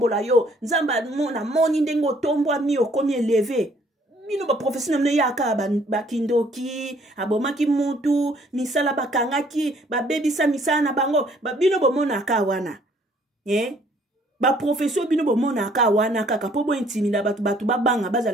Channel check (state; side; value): normal; both; correlation 0.61